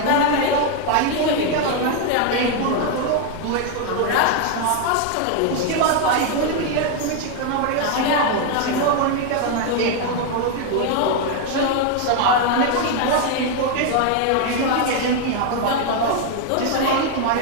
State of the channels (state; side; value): different; both; correlation 0.01